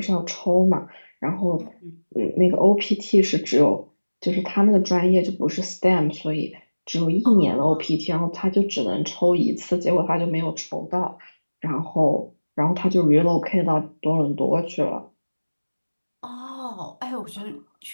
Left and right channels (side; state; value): both; inverted; correlation -1.00